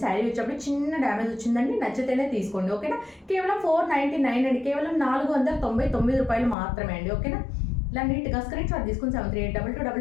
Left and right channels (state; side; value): drops out; right; at 6.6 s